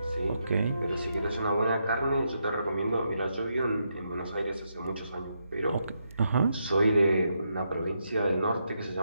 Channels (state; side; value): inverted; both; correlation -0.81